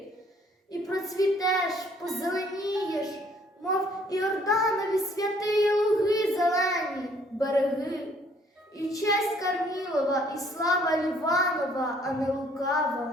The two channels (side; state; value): both; normal; correlation 0.62